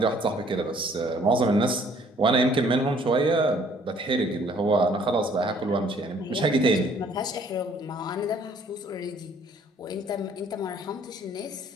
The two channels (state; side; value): normal; both; correlation 0.59